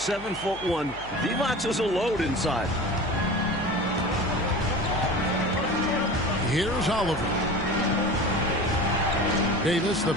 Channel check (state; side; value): noise; left; hum, 17 dB below the sound